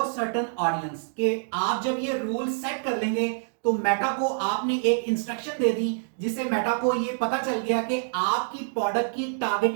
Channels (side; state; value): left; silent; digital silence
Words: certain audience, के आप जब ये रूल सेट कर लेंगे तो मेटा को आपने एक इंस्ट्रक्शन दे दी जिससे मेटा को ये पता चल गया कि आपकी प्रोडक्ट की